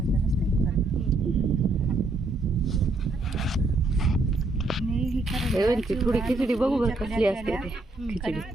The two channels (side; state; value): left; quieter; 3.1 dB